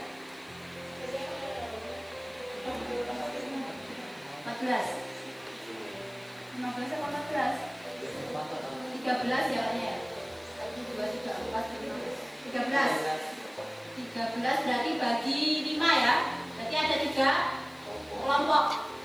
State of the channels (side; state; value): left; noise; hiss, 27 dB below the sound